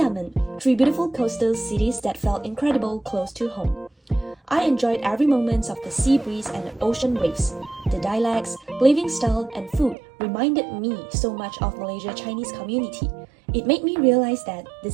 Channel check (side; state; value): left; drops out; at 10.0 s